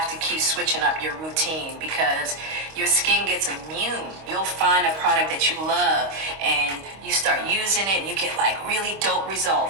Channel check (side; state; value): left; late; 25 ms